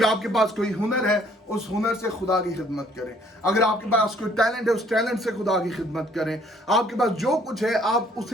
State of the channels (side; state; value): both; normal; correlation 0.61